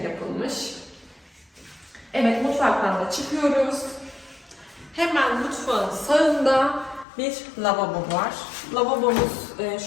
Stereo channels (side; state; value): right; drops out; at 7.1 s